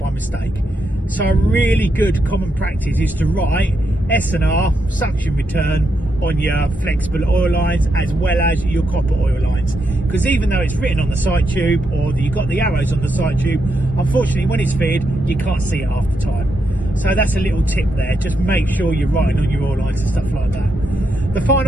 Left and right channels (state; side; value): normal; both; correlation 0.82